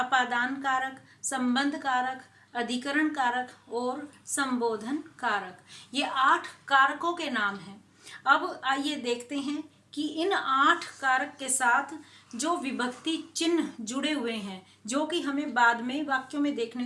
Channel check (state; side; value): identical; both; correlation 1.00